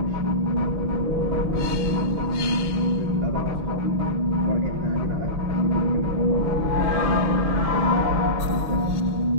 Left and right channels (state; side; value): late; left; 6.2 ms